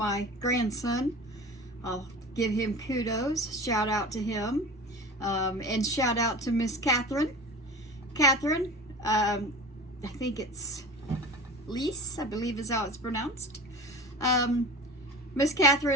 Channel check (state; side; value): normal; both; correlation 0.35